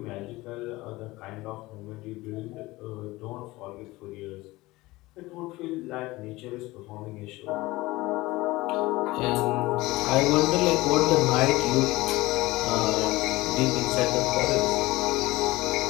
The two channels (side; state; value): right; quieter; 19.9 dB